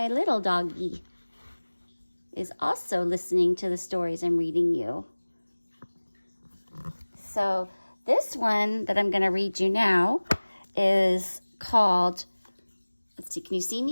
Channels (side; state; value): both; inverted; correlation -1.00